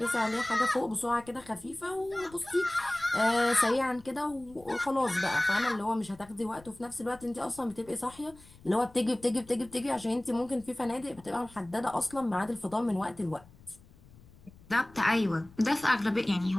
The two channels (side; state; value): left; noise; rumble, 24 dB below the sound